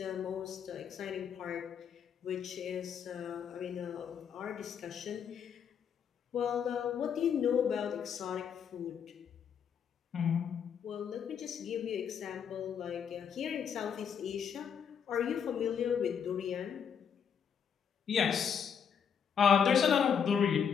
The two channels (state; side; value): quieter; right; 7.5 dB